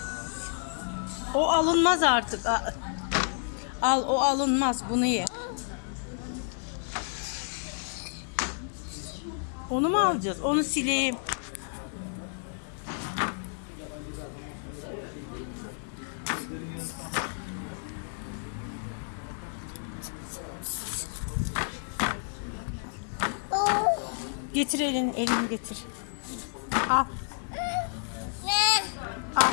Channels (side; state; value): right; silent; digital silence